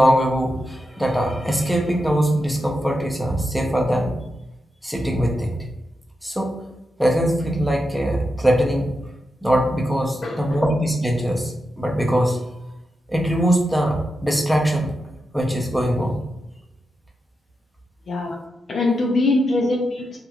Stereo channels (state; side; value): normal; both; correlation 0.87